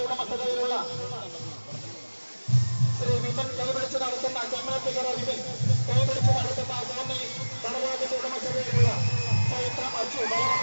ഉടമസ്ഥതയിലുള്ള ശ്രീ വിപിൻ കൈപിടിച്ച് നടത്തുന്ന ചെമ്മാറ്റുകര വിപിൻ കൈപിടിച്ച് നടത്തുന്ന കോന്നി നടരാജന്റെ ഉടമസ്ഥതയിലുള്ള ചൈത്രം അച്ചു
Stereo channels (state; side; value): inverted; both; correlation -1.00